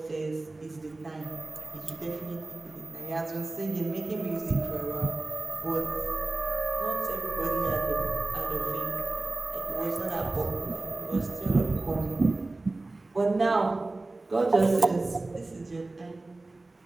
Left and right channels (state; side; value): quieter; left; 3.1 dB